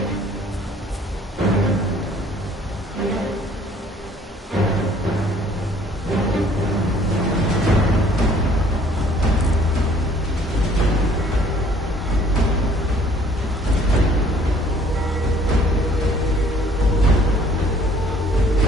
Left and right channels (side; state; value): both; normal; correlation 0.57